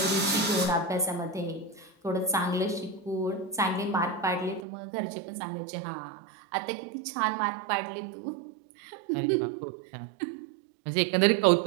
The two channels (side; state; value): left; drops out; at 4.6 s